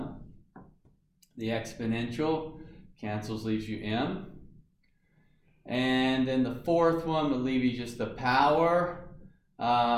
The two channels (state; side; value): identical; both; correlation 1.00